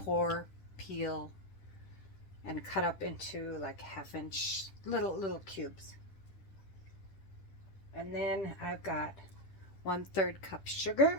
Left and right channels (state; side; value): late; right; 10 ms